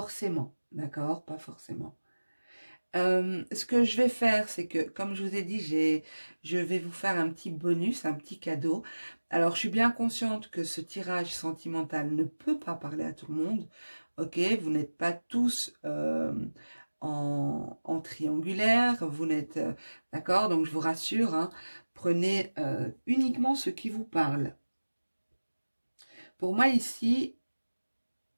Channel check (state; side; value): inverted; both; correlation -1.00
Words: d'accord? Pas forcément. Ce que je vais faire, c'est que, comme je vous ai dit, je vais vous faire un petit bonus, un petit cadeau. Alors, je suis bien consciente que ce tirage sentimental ne peut pas parler à tout le monde. Ok, vous n'êtes pas tous en triangulaire, vous n'êtes... d'accord, donc je vous rassure, hein, Prenez uniquement ce qui vous parle. Pour moi ici,